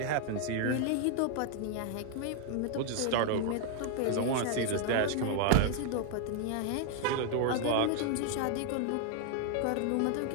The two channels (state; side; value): different; both; correlation 0.00